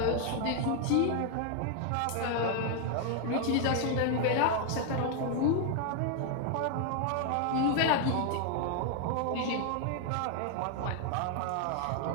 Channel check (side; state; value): both; different; correlation 0.00